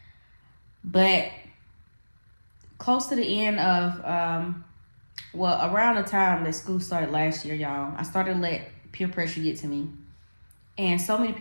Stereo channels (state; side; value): inverted; both; correlation -1.00